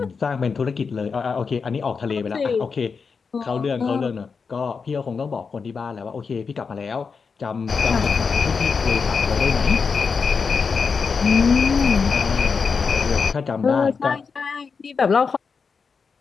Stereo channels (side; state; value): right; quieter; 5.3 dB